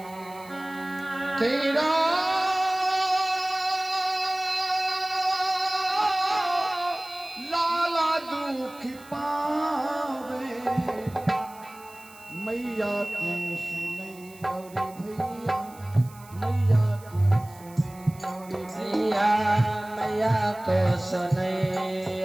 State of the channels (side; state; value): right; noise; hiss, 23 dB below the sound